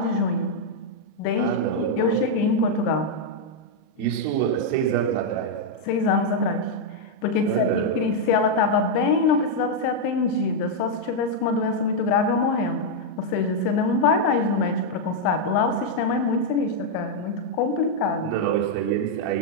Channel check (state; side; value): late; right; 38 ms